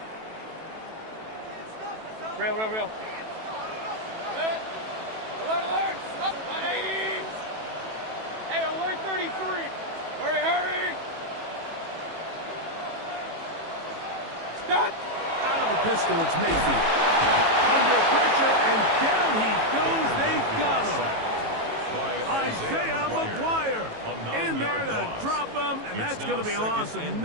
Real. Alert. Up. 180. Hey, alert 33. Hurry. Stop. Out of a pistol, it's Mayfield. Under pressure, and down he goes. They got him. Isaiah McGuire in there to drop him, and that's going to be a loss of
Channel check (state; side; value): late; left; 18 ms